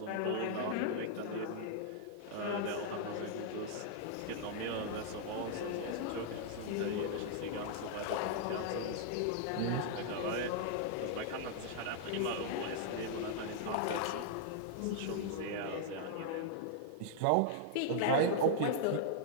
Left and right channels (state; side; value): different; both; correlation -0.01